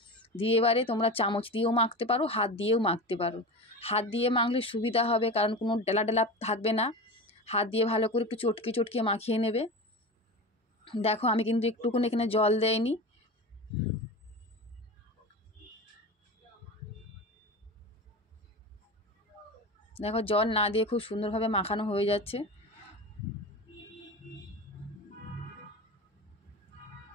দিয়ে এবারে তোমরা চামচ দিয়েও মাখতে পারো, হাত দিয়েও মাখতে পারো। হাত দিয়ে মাখলে সুবিধা হবে, কারণ কোনো ডেলা ডেলা থাকবে না। হাত দিয়ে ভালো করে একটু চটকে চটকে মাখিয়ে নেবে। দেখো আমি কিন্তু একটুকুনি এখানে জল দেইনি। দেখো জল না দিয়ে খুব সুন্দরভাবে মাখানো হয়ে যাচ্ছে।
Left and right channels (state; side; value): normal; both; correlation 0.28